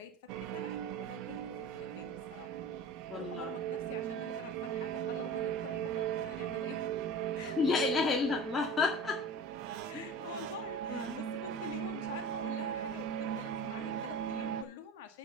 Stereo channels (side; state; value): both; normal; correlation 0.35